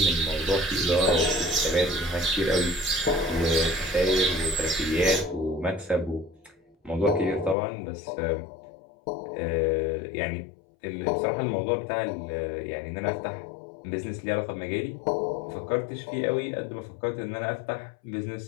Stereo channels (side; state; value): right; drops out; at 7.6 s